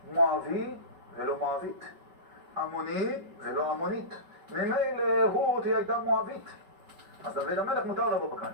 מואבי ולא מואבית, עמוני ולא עמונית. ממילא רות היא הייתה מואבית, אז דוד המלך מותר לבוא בקהל.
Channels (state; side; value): late; left; 5.2 ms